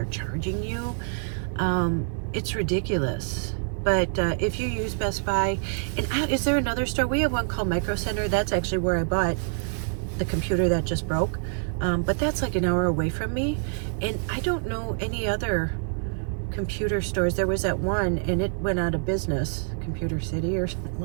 charging you, it's ridiculous. But if you use Best Buy, and is there another store? We have one called Micro Center. That's actually where I bought the computer that just broke. But that's like an hour away from me. And I don't know any other computer stores. There was that one, and it went out of business, Computer City or something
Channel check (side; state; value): left; silent; digital silence